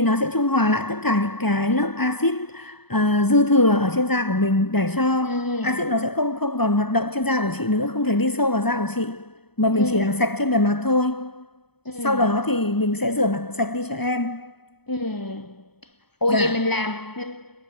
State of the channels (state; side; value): late; right; 0.98 ms